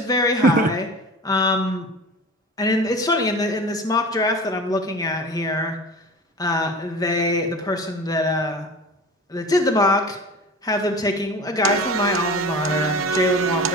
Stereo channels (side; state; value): both; normal; correlation 0.35